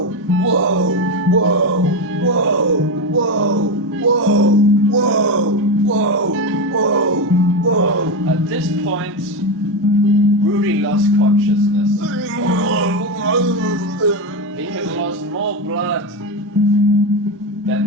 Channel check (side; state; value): both; normal; correlation 0.13